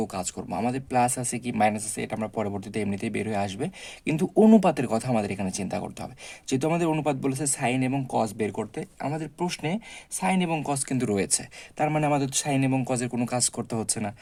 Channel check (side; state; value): both; identical; correlation 1.00